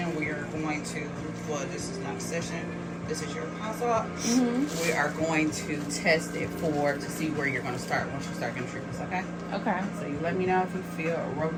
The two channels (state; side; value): identical; both; correlation 1.00